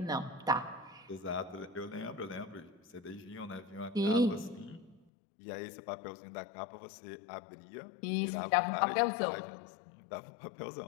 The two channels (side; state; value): right; drops out; at 5.0 s